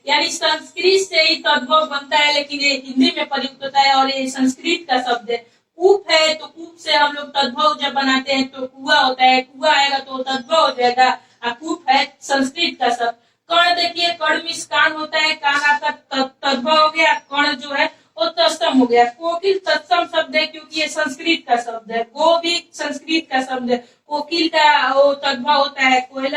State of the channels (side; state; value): both; identical; correlation 1.00